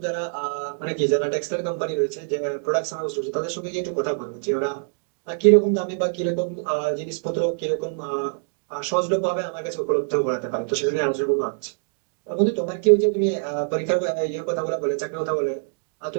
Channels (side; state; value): left; silent; digital silence